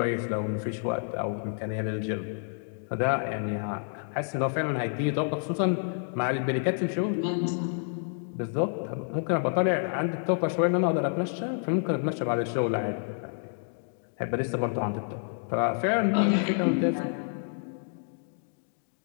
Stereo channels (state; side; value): silent; right; digital silence